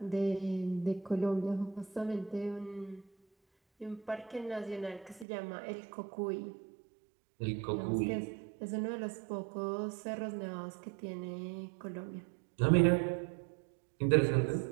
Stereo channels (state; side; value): drops out; left; at 5.2 s